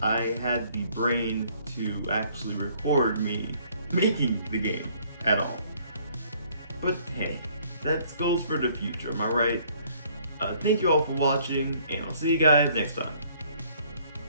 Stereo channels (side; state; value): both; inverted; correlation -0.61